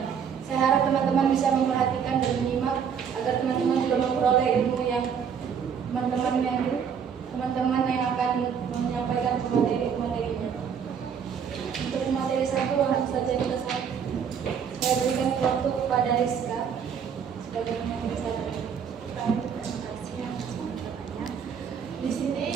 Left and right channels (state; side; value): quieter; left; 7.3 dB